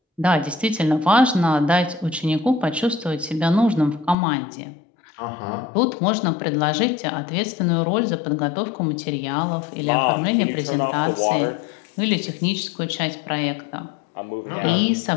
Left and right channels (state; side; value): drops out; right; at 4.2 s